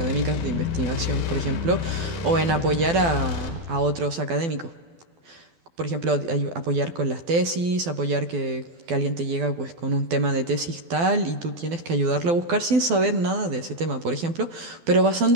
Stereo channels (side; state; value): left; late; 12 ms